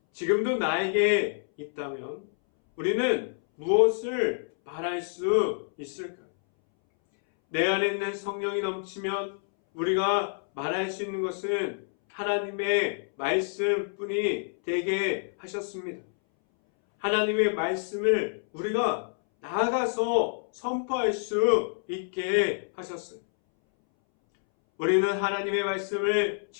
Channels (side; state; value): right; silent; 60 dB below the other